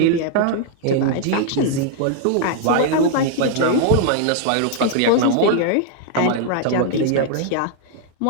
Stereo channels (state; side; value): different; both; correlation 0.00